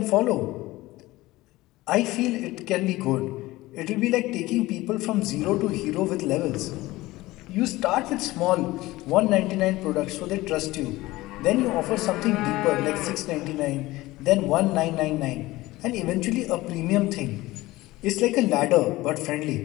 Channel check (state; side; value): quieter; right; 18.7 dB